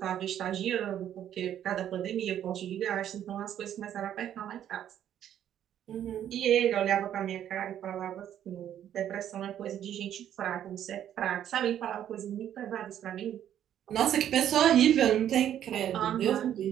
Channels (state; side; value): quieter; left; 10.5 dB